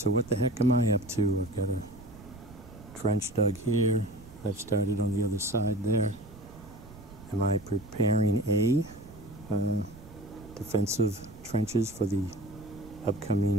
what the heck am I up to? I've got a trench dug here. I've started on the other side there. Am I preparing A, defensive trenches for the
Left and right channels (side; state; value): right; noise; rumble, 19 dB below the sound